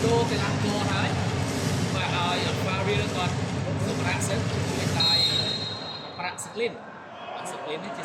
đô thì làm cô hái và ở pha riêng còn sự bạc sức hiện tại bạc sức lên thì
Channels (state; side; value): identical; both; correlation 1.00